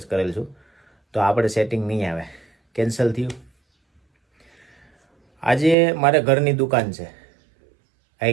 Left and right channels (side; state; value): left; drops out; at 5.8 s